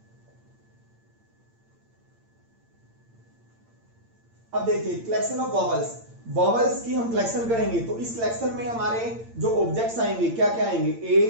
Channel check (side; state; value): left; late; 8.8 ms